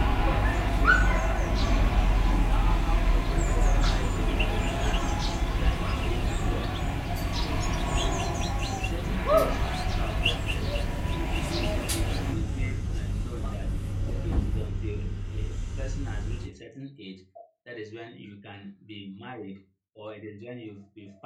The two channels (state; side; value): identical; both; correlation 1.00